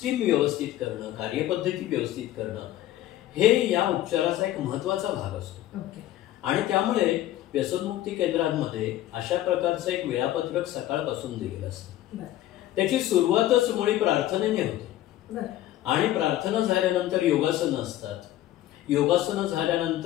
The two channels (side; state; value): right; quieter; 14.1 dB